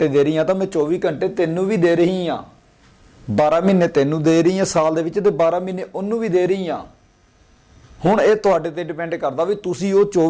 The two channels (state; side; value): identical; both; correlation 1.00